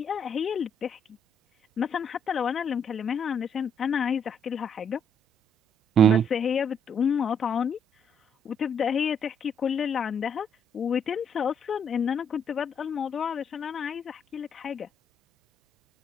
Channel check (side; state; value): both; normal; correlation 0.71